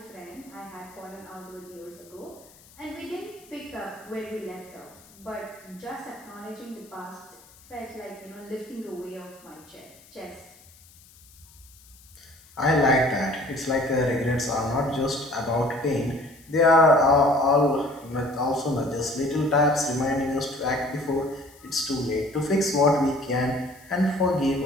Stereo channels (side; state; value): left; noise; hiss, 25 dB below the sound